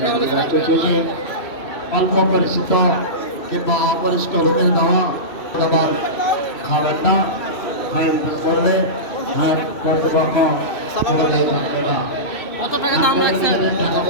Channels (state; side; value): late; right; 2.6 ms